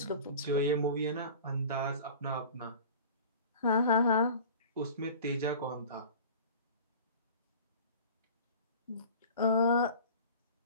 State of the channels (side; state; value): both; inverted; correlation -0.40